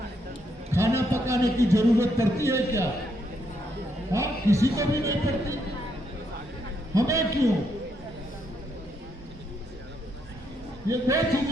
खाना पकाने की जरूरत पड़ती है क्या? हाँ, किसी को भी नहीं पड़ती। हमें क्यों? ये दो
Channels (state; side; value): normal; both; correlation 0.76